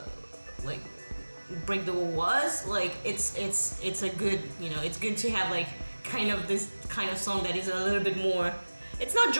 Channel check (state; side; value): inverted; both; correlation -1.00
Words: like Break the Wall was like. It's a good it's good to have like kind of this kind of song that is a little bit more. It's not